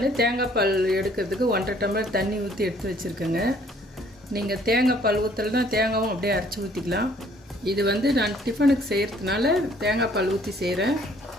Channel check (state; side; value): normal; both; correlation 0.60